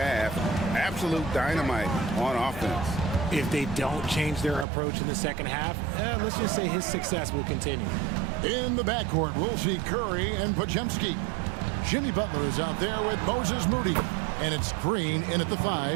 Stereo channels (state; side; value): drops out; left; at 4.7 s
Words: Absolute dynamite on offense. If they don't change their approach in the second half, let's just say his success will continue. In the backcourt, we'll see Curry and Podziemski. Jimmy Butler is out there with Moses Moody. And it's Green in at the